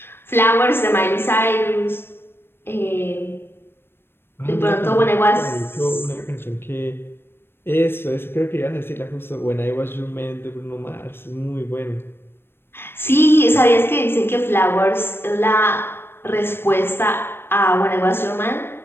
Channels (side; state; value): right; late; 0.11 ms